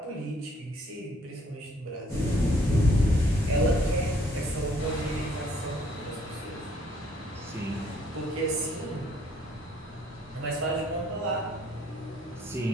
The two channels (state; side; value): normal; both; correlation 0.64